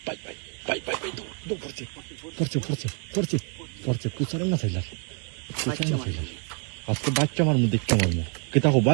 bye bye bye bye bye দৌড় পড়ছে পড়ছে পড়ছে পড়ছে পড়ছে কুচারে না চাইলার কুচারে না চাইলার আজকে বাচ্চা মারমু দেখতে মারমু কেতা হো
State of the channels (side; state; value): left; quieter; 37.7 dB